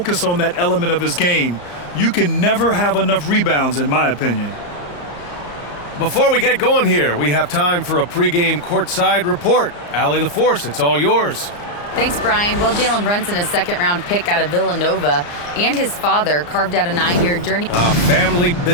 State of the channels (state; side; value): late; right; 34 ms